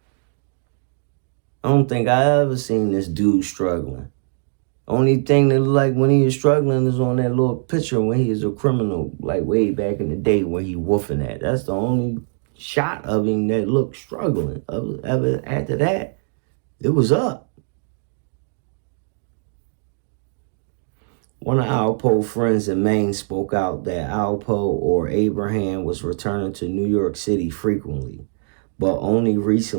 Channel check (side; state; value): left; silent; digital silence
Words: I don't think I ever seen this dude struggling. Only thing that looked like when he was struggling is on that little picture when he was a criminal, like way back in the day when he woofing at. That's the only shot of him that looked struggling. After that, it was up. One of Alpo's friends in Maine spoke out that Alpo or Abraham was returning to New York City frequently, but only